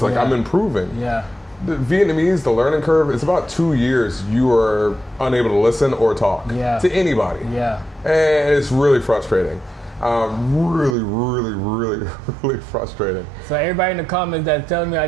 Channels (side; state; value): left; drops out; at 11.0 s